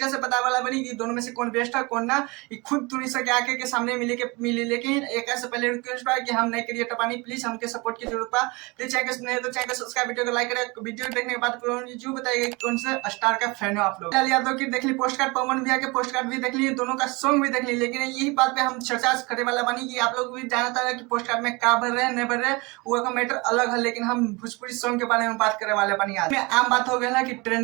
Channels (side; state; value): left; quieter; 26.0 dB